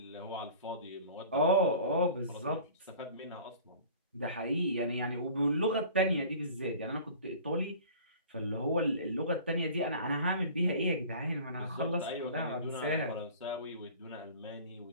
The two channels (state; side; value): inverted; both; correlation -0.43